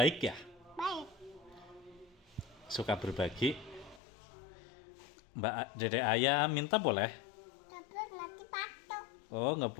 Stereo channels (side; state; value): right; drops out; at 4.0 s